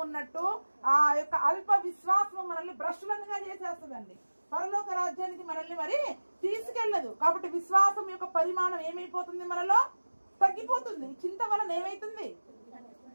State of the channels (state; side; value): inverted; both; correlation -1.00